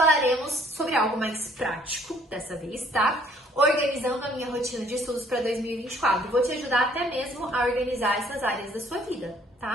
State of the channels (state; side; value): normal; both; correlation 0.61